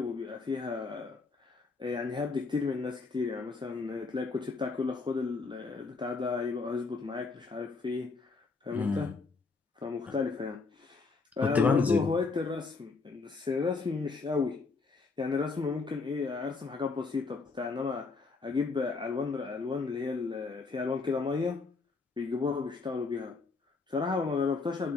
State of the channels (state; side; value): quieter; right; 4.3 dB